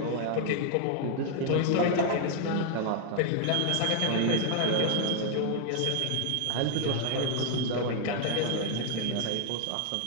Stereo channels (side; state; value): both; different; correlation 0.00